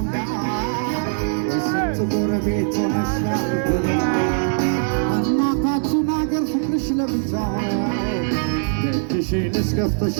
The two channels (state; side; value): silent; left; digital silence